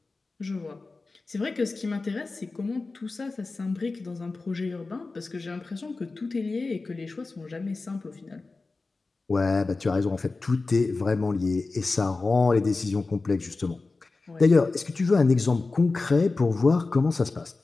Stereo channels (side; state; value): right; quieter; 3.7 dB